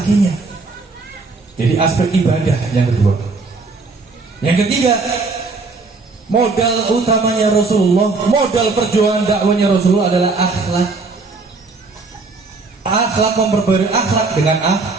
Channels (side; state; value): left; quieter; 3.9 dB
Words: Jadi aspek ibadah yang kedua. Yang ketiga, modal utamanya Rasulullah, modal perjuangan dakwanya Rasulullah adalah akhlak. Akhlak, memperbarui akhlak dengan